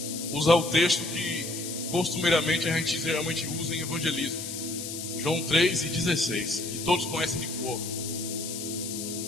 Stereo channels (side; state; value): left; noise; hiss, 7 dB below the sound